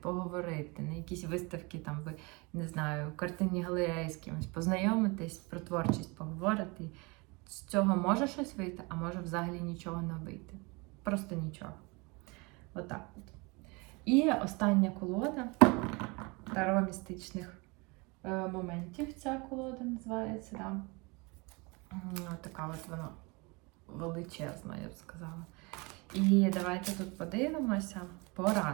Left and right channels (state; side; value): quieter; left; 27.6 dB